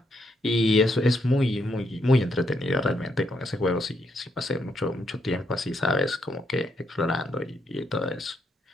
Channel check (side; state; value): both; normal; correlation 0.76